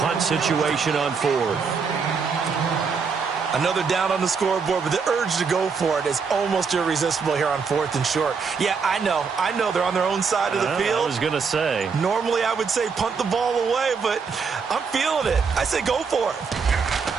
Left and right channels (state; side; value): quieter; left; 5.5 dB